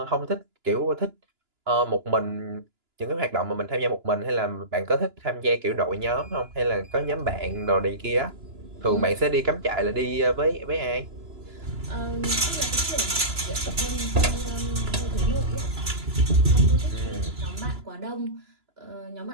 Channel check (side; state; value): left; late; 2.9 ms